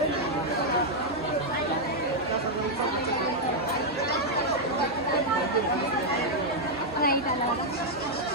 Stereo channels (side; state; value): both; normal; correlation -0.02